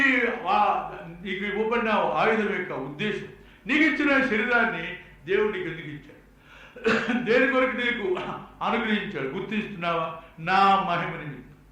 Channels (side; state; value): both; identical; correlation 1.00